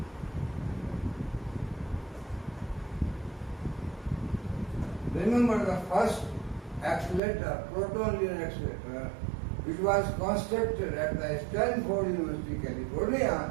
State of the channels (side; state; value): left; drops out; at 7.2 s